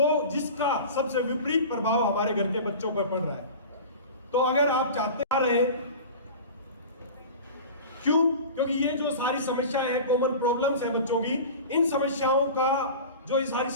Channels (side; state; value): both; inverted; correlation -0.35